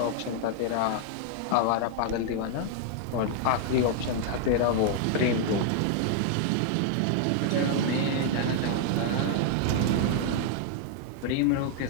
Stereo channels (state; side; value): different; both; correlation 0.00